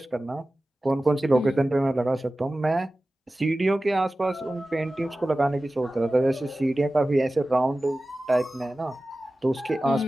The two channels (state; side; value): normal; both; correlation 0.96